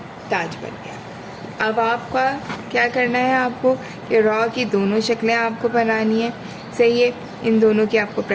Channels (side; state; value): both; identical; correlation 1.00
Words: ताज बन गया। अब आपका क्या करना है, आपको कि रॉ की दोनों शक्लें आपको बनानी है, सही है। इन दोनों की आपको